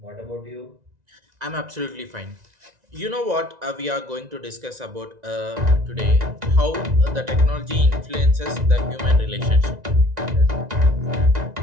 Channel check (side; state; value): left; late; 1.9 ms